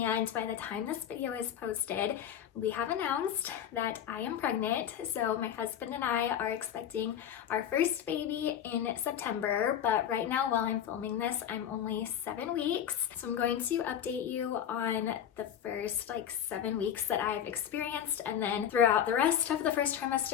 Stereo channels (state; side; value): quieter; right; 9.5 dB